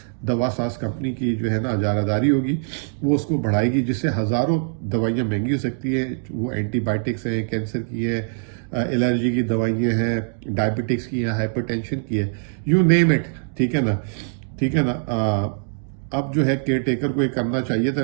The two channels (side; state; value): left; silent; digital silence